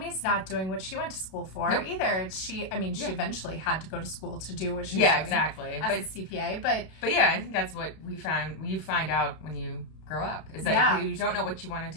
not doing what she went to school for either. She eventually had to go to school to do what she was doing exactly. as a CPA. But yeah, I think that's what we found. You find out when you grow up is that you don't know what you want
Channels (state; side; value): late; right; 32 ms